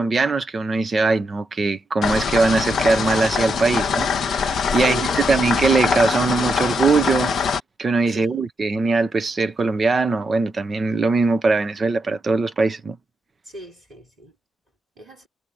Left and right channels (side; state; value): both; normal; correlation 0.83